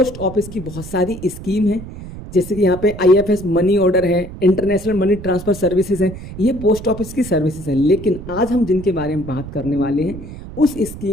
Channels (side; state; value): right; noise; rumble, 12 dB below the sound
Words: ऑफिस की बहुत सारी स्कीम है, जैसे कि यहाँ पे IFS मनी ऑर्डर है, इंटरनेशनल मनी ट्रांसफर सर्विसेज है, ये पोस्ट ऑफिस की सर्विसेज है। लेकिन आज हम जिनके बारे में बात करने वाले हैं उस